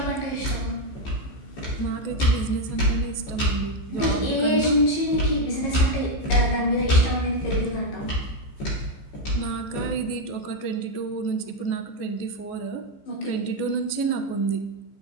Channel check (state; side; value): late; right; 15 ms